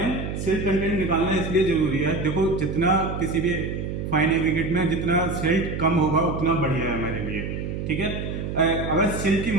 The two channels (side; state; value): right; noise; hum, 4 dB below the sound